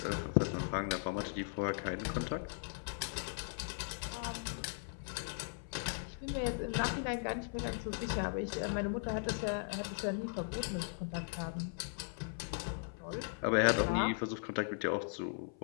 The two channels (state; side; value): silent; right; 52 dB below the other